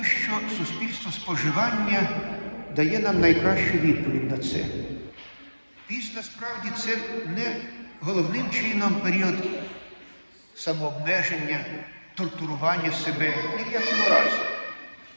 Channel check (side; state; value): both; inverted; correlation -1.00